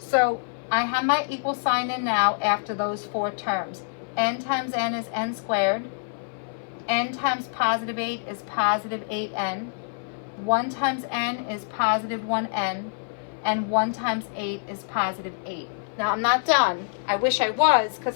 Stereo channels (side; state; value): right; silent; 57 dB below the other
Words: I have my equal sign in now after those 4 terms. N times n is n squared. N times positive 8 is positive 8n. 1 times n is positive 1n. And 1 times 8 is positive 8. Now I'm not done. I wish I was because